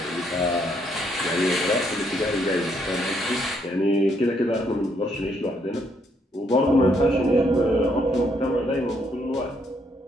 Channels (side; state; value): both; normal; correlation 0.72